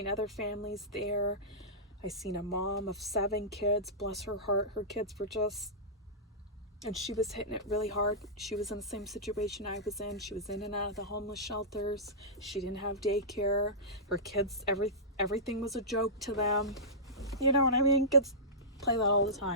other families there. I seen a mom of 7 kids, bless her heart. Her kids were just, and she was hitting it really hard. She was in the same situation I was in. She was in and out of the homeless shelters. She didn't have daycare. Her kids, everything was a joke to them. You know what I mean? Kids play that all the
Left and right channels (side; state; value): both; normal; correlation -0.17